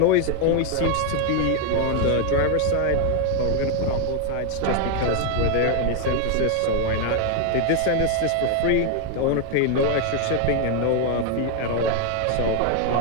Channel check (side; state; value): both; different; correlation 0.00